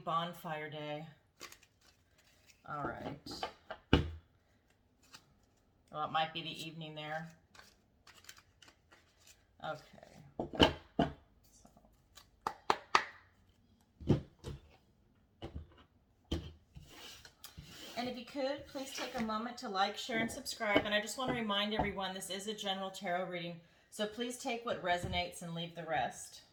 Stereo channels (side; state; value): both; identical; correlation 1.00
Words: Day. All right. Well, it might be the evening there. Okay. And if you could, please take a moment to like, share, and subscribe. And I just want to remind everyone this is a general tarot reading, so please take what resonates and leave the rest.